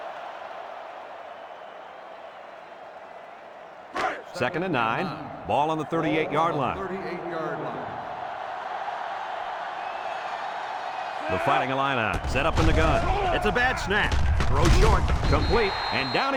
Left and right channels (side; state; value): both; identical; correlation 1.00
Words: Second and 9. Ball on the 38-yard line. The Fighting Illini set up in the gun. It's a bad snap. Throw short, complete, and down